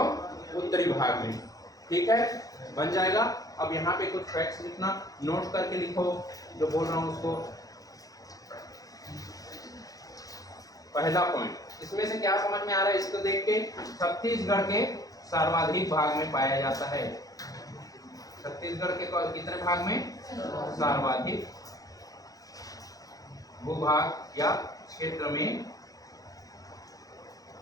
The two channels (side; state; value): right; late; 0.17 ms